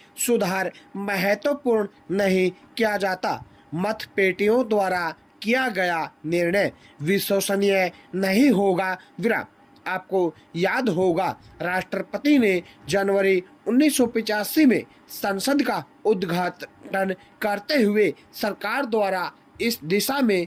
सुधार महत्वपूर्ण नहीं किया जाता, मतपेटियों द्वारा किया गया निर्णय विश्वसनीय नहीं होगा। विराम। आपको याद होगा, राष्ट्रपति ने जनवरी 1985 में संसद का उद्घाटन करते हुए सरकार द्वारा इस दिशा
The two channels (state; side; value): identical; both; correlation 1.00